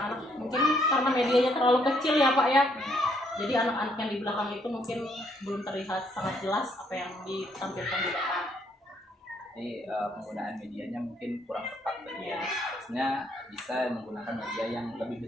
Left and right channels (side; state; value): both; normal; correlation 0.70